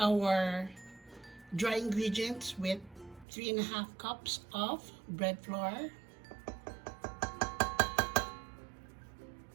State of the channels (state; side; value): drops out; left; at 3.2 s